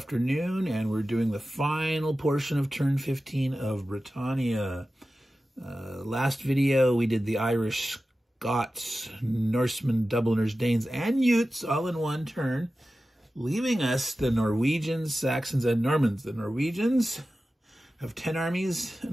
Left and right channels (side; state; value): both; normal; correlation 0.94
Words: and we're doing the final portion of turn 15 of Britannia. Last video we did the Irish, Scots, Norsemen, Dubliners, Danes, and Utes all in one turn, leaving us the Norwegians, Saxons, and Normans. The Norwegians have 10 armies